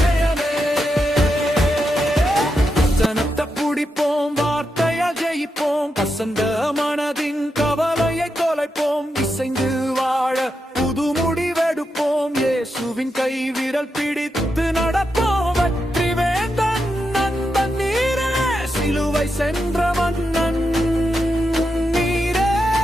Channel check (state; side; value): normal; both; correlation 0.86